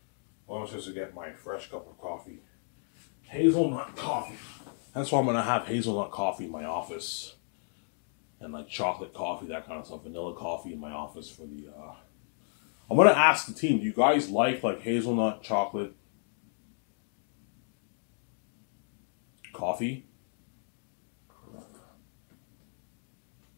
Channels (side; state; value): right; silent; digital silence